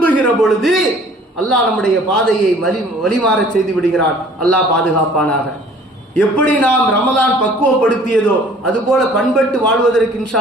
பொழுது அல்லாஹ் நம்முடைய பாதையை வழிமாற செய்து விடுகிறான். அல்லாஹ் பாதுகாப்பானாக. எப்படி நாம் ரமலான் பக்குவப்படுத்தியதோ அதுபோல பண்பட்டு வாழ்வதற்கு இன்ஷா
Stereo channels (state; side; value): normal; both; correlation 0.53